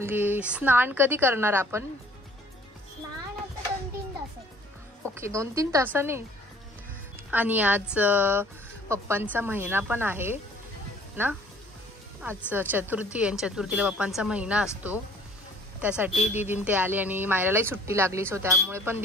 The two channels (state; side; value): normal; both; correlation 0.54